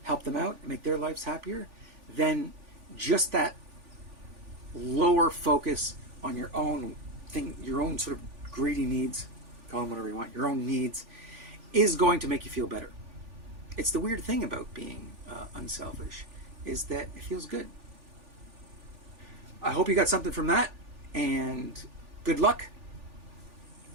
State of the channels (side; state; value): left; late; 3.4 ms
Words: help them out and make their lives happier, then just that lower focus on your own thing, your own sort of greedy needs, call them whatever you want, your own needs, is going to make you feel better. It's the weird thing about being unselfish, is that it feels good. I hope you got something from that, and good luck.